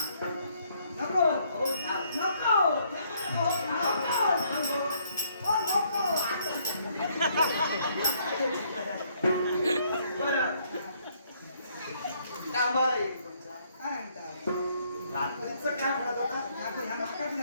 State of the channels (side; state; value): both; inverted; correlation -0.68